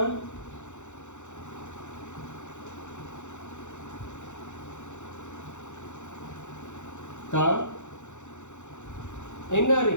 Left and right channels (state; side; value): late; right; 0.84 ms